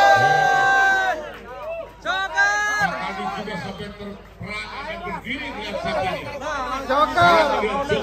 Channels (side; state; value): both; identical; correlation 1.00